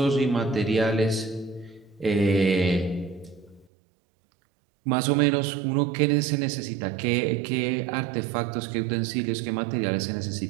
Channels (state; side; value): drops out; left; at 3.7 s